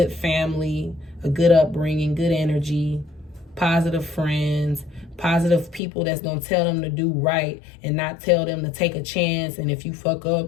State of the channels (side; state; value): right; drops out; at 5.8 s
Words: family, a good upbringing, good energy, positive friends, positive people that's going to tell them to do right and not tell them to take a chance. And if you fuck